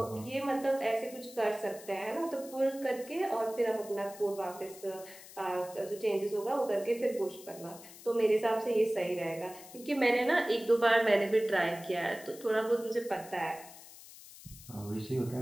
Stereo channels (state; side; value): noise; left; hiss, 18 dB below the sound